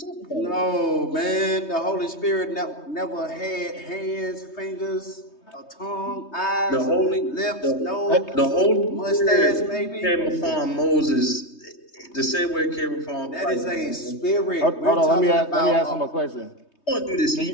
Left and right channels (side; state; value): right; late; 3.2 ms